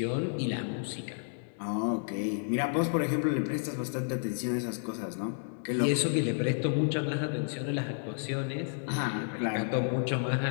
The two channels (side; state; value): right; silent; digital silence